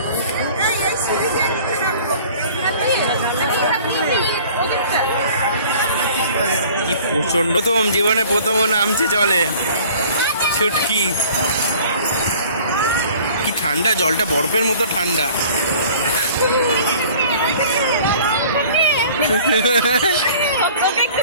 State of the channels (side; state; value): both; inverted; correlation -0.49